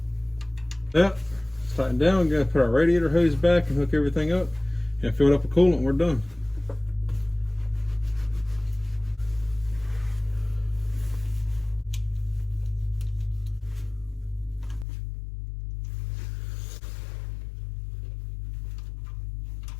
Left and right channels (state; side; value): drops out; right; at 14.9 s